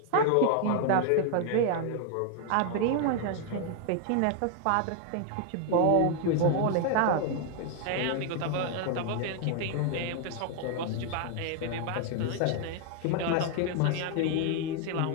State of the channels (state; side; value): different; both; correlation 0.00